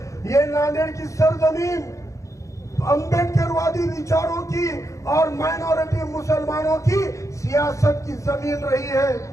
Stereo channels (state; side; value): late; right; 0.15 ms